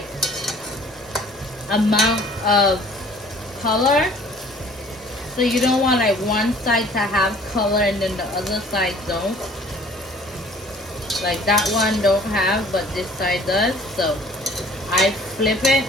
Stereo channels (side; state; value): both; normal; correlation 0.52